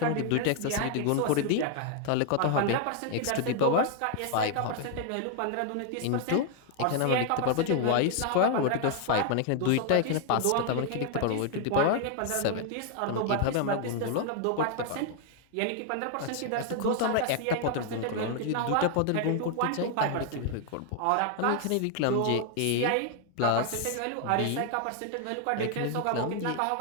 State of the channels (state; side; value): different; both; correlation 0.00